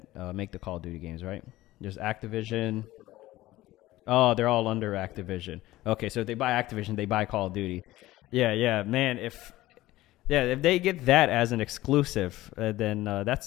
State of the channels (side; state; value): right; quieter; 16.8 dB